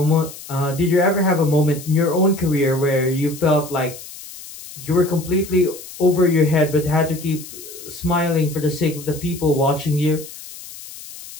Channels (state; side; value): noise; left; hiss, 15 dB below the sound